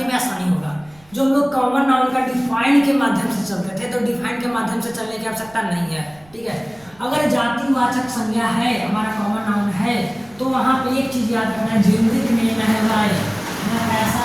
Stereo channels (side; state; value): right; noise; rumble, 28 dB below the sound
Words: में आसानी होगा। जो हम लोग कॉमन नाउन का डिफाइन के माध्यम से चलते थे, तो डिफाइन के माध्यम से चलने की आवश्यकता नहीं है, ठीक है। अगर जातिवाचक संज्ञा है, हमारा कॉमन नाउन है, तो वहाँ पे एक चीज याद रखना, जेनरिक नेम है भाई,